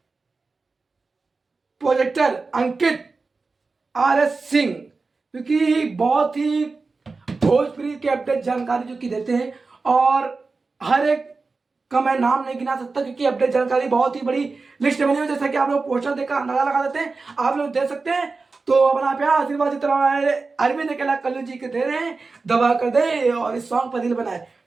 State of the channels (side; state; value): left; quieter; 4.0 dB